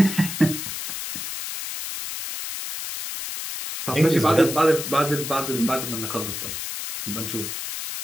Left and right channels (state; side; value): noise; left; hiss, 6 dB below the sound